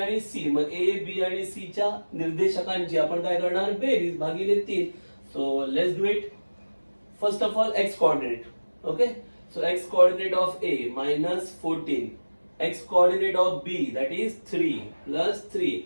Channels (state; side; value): inverted; both; correlation -1.00